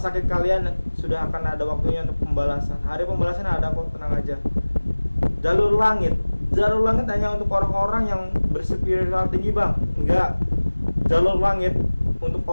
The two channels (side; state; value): both; inverted; correlation -1.00